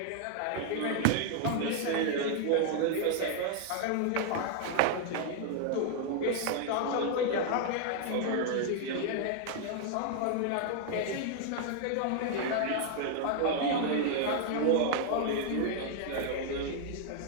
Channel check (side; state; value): both; different; correlation 0.00